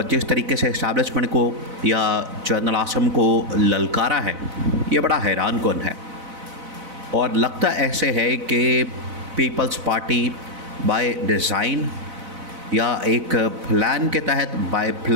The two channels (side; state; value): left; late; 4.0 ms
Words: जिस तरीके से इस्टेब्लिशमेंट को या जनरल आसम को ललकारा है, ये बड़ा हैरान कुन है। और लगता ऐसे है कि पीपल्स पार्टी बाय डिज़ाइन या एक प्लान के तहत बाय